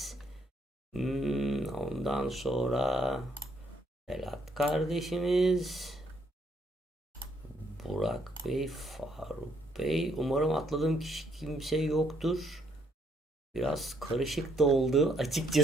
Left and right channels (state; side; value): normal; both; correlation 0.70